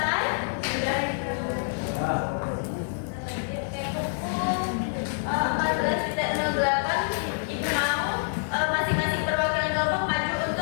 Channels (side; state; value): right; silent; digital silence